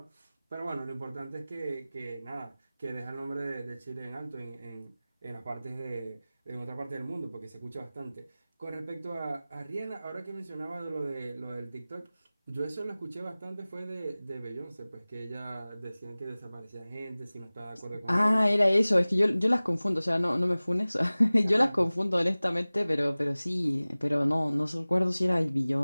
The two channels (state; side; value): inverted; both; correlation -0.99